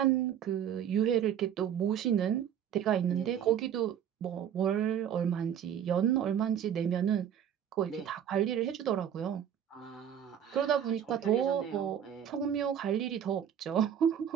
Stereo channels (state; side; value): quieter; left; 9.2 dB